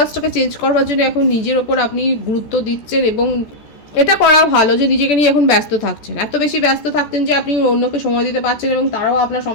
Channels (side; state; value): right; late; 13 ms